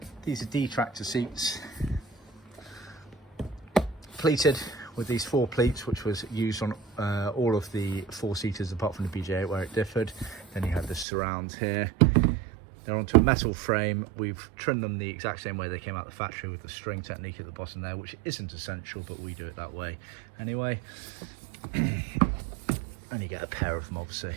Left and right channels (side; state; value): left; drops out; at 11.1 s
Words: these are detractor seats, pleated with these four pleats, which was used on all of the four-seaters apart from the BJ8 where it differed. Then you have the surrounds here. They're onto a metal frame. We've trimmed them the exact same way they came out the factory with the string technique at the bottom there, which isn't essential, but we do it that way anyway. And you get a pair of them obviously